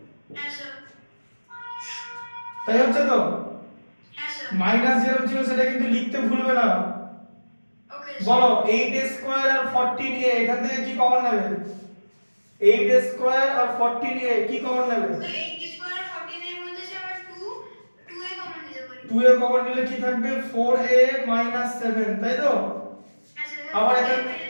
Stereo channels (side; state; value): both; inverted; correlation -1.00